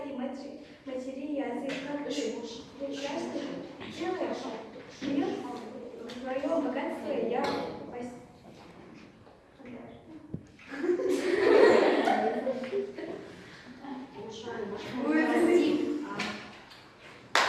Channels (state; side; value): identical; both; correlation 1.00